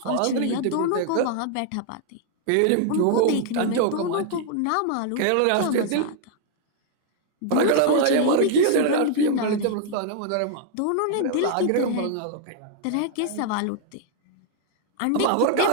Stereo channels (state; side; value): different; both; correlation 0.00